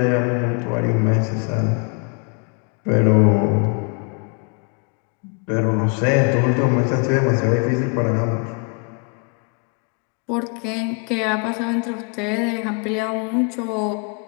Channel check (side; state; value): right; quieter; 36.8 dB